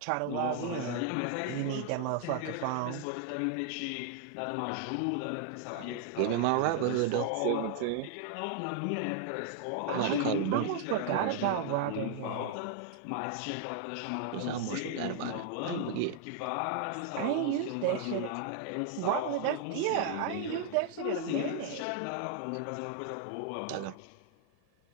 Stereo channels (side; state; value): both; different; correlation 0.00